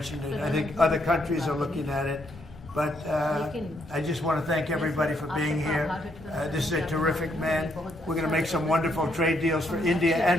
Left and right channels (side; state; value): both; normal; correlation 0.73